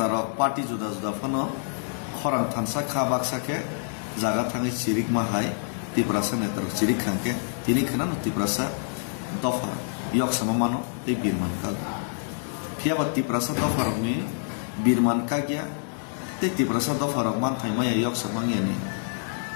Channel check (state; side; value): silent; right; digital silence